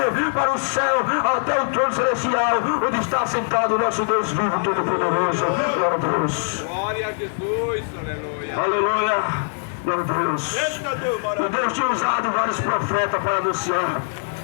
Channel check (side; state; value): right; silent; 64 dB below the other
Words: para o céu, até o trono celestial, onde está sentado o nosso Deus vivo, todo-poderoso. Glória a Deus. Glória a Jesus, aleluia. Aleluia. Glória a Deus. E Deus tinha usado vários profetas para anunciar